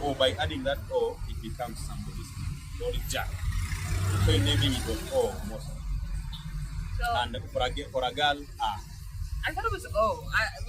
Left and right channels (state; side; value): identical; both; correlation 1.00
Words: by adding that O, it becomes somebody's name. So it's Jack. So in naming it was O most. So, and for a girl, I thought it was O.